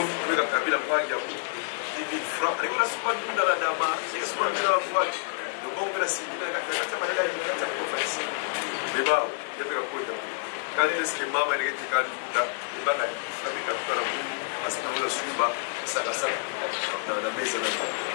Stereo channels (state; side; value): silent; right; 59 dB below the other